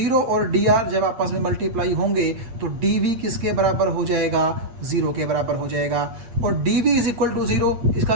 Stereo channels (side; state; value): left; late; 8.4 ms